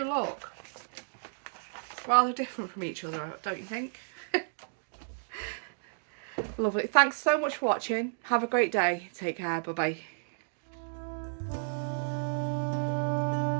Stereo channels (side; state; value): left; silent; digital silence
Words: look rather different from each other, don't you think? Lovely. Thanks so much for watching. Have a great day. Take care. Bye bye.